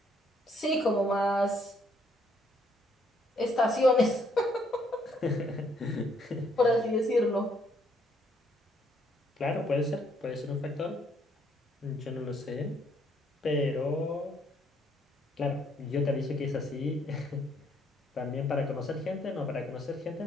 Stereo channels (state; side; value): normal; both; correlation 0.69